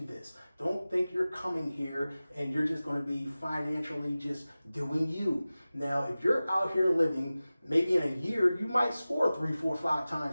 Don't think you're coming here and you're just going to be financially just doing you. Now, if you're out here living, maybe in a year, you might score 3, 4, 5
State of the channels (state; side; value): inverted; both; correlation -0.97